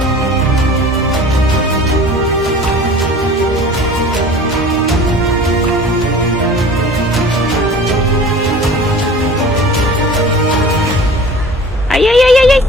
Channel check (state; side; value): normal; both; correlation 0.43